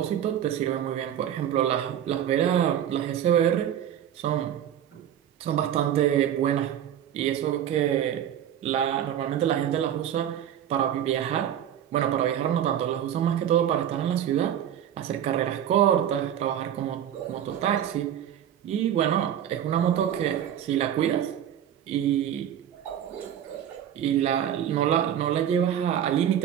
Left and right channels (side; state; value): left; quieter; 10.2 dB